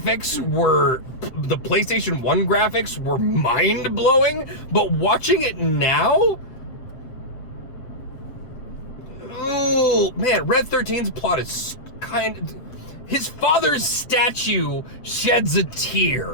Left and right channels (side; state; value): right; late; 7.3 ms